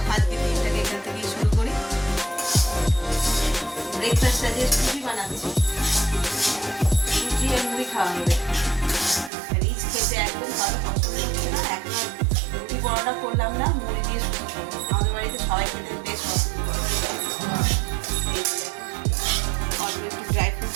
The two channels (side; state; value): left; drops out; at 9.3 s